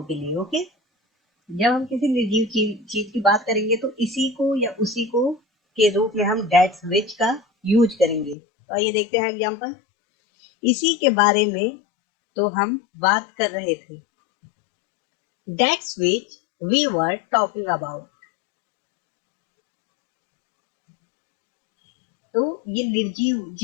के लिए, ओके। जब हम किसी निर्जीव चीज की बात करेंगे तो इसी को या उसी को के रूप में हम दैट्स विच का यूज करेंगे। तो आइए देखते हैं एग्जांपल। इसी के बारे में तो हम बात कर रहे थे। That's which we were talking about. तो ये निर्जीव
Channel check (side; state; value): right; drops out; at 8.3 s